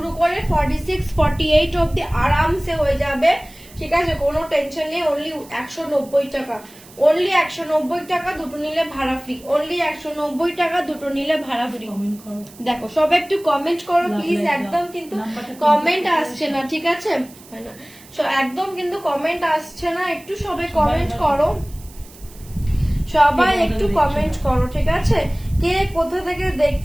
করে 46, 48 অবধি আরামসে হয়ে যাবে, ঠিক আছে, কোনো টেনশন নেই। অনলি 190 টাকা, অনলি 190 টাকা, দুটো নিলে ভাড়া ফ্রি, অনলি 190 টাকা, দুটো নিলে ভাড়া ফ্রি। দেখো সব একটু কমেন্ট করো প্লিজ, একদম কিন্তু কমেন্ট আসছে না, ঠিক আছে, একদম কিন্তু কমেন্ট আসছে না, একটু সবাই কমেন্ট করো, সবাই একটু কমেন্ট করো, ঠিক আছে। কে কোথা থেকে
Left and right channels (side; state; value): right; noise; hiss, 22 dB below the sound